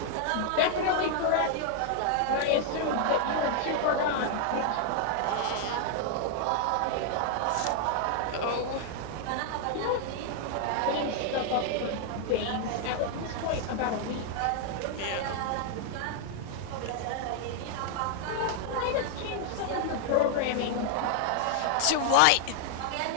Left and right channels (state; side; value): different; both; correlation 0.00